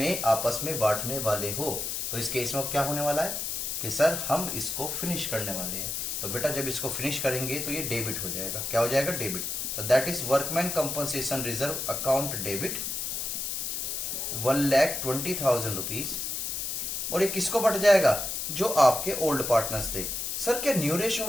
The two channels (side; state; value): left; noise; hiss, 3 dB below the sound